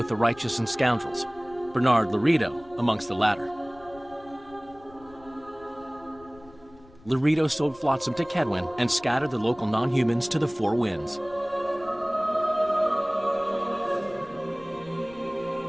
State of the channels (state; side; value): noise; left; rumble, 24 dB below the sound